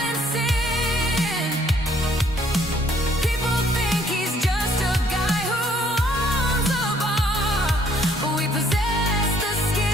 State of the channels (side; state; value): both; normal; correlation 0.64